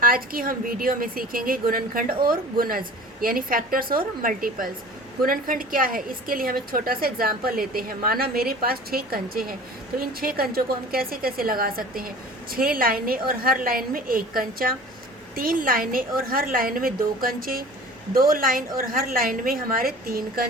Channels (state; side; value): normal; both; correlation 0.42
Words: आज की हम वीडियो में सीखेंगे गुणनखंड और गुणज यानी फैक्टर्स और मल्टीपल्स। गुणनखंड क्या है, इसके लिए हम एक छोटा सा एग्जाम्पल लेते हैं। माना मेरे पास 6 कंचे हैं, तो इन 6 कंचों को हम कैसे कैसे लगा सकते हैं। 6 लाइनें और हर लाइन में एक कंचा, 3 लाइनें और हर लाइन में 2 कंचे, 2 लाइन और हर लाइन में हमारे 3